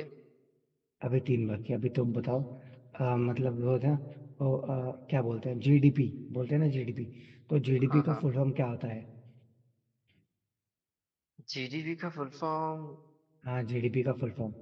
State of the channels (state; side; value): identical; both; correlation 1.00